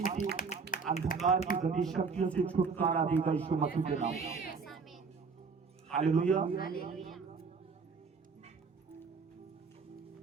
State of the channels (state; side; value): quieter; left; 5.1 dB